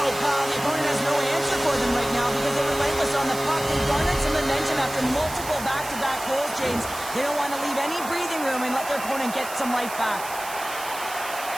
The opponent has no answer for them right now because they're relentless on the puck. They garnered some momentum after multiple back-to-back goals, James. They don't want to leave any breathing room and let their opponent get some life back.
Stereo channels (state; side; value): noise; right; hiss, 11 dB below the sound